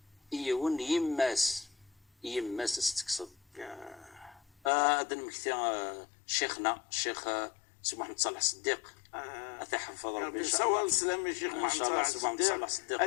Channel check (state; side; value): drops out; right; at 4.7 s